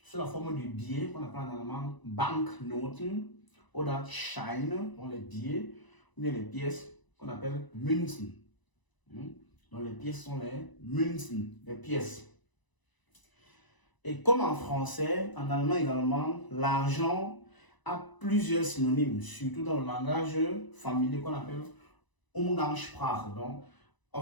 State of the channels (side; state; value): right; late; 1.0 ms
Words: Sous la forme du billet, qu'on appelle en allemand Banknoten, ou Scheine, dans les billets, ou bien les pièces qu'on appelle Münzen. Donc, les pièces sont les Münzen, les pièces. Et comme en français, en allemand également, l'argent a plusieurs synonymes, surtout dans le langage familier qu'on appelle Umgangssprache. Donc,